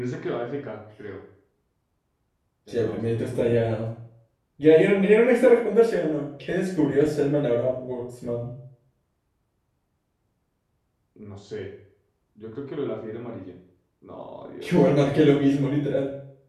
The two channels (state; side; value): identical; both; correlation 1.00